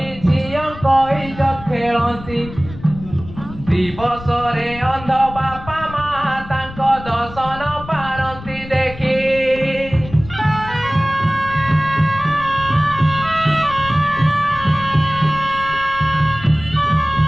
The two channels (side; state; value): left; noise; rumble, 14 dB below the sound